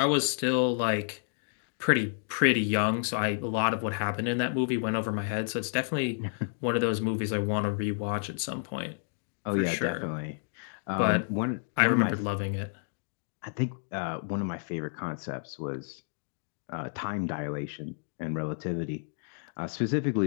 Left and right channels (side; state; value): right; silent; digital silence